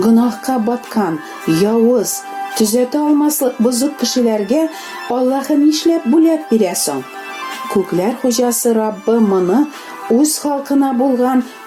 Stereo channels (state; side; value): identical; both; correlation 1.00